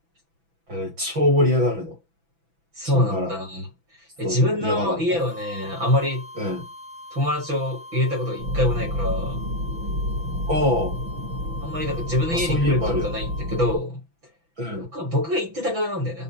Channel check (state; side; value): late; left; 6.0 ms